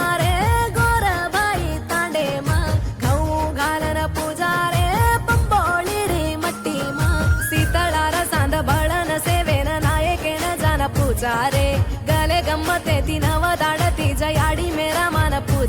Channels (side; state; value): both; identical; correlation 1.00